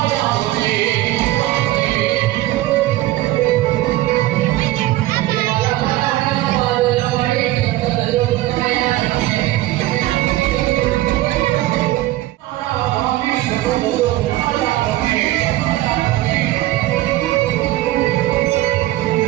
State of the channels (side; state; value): left; quieter; 16.3 dB